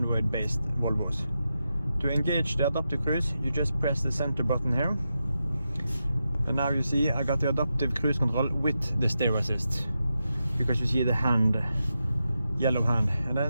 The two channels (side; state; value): both; inverted; correlation -0.88